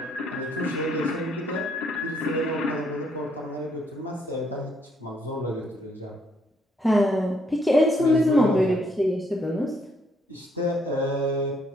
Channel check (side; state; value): both; normal; correlation 0.70